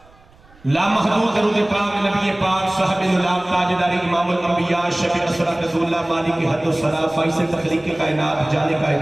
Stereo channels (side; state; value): right; noise; rumble, 28 dB below the sound